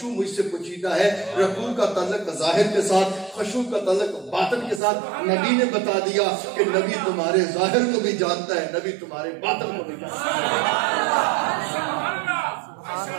مجھ سے پوشیدہ ہے۔ رکوع کا تعلق ظاہر کے ساتھ، خشوع کا تعلق باطن کے ساتھ۔ نبی نے بتا دیا کہ نبی تمہارے ظاہر کو بھی جانتا ہے، نبی تمہارے باطن کو بھی جانتا ہے۔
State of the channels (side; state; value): left; drops out; at 4.8 s